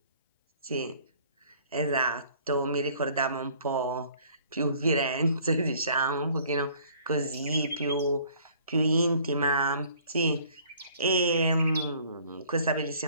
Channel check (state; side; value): inverted; both; correlation -0.56